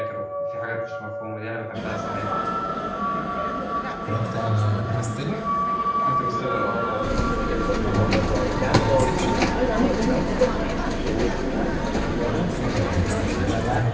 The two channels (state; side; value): identical; both; correlation 1.00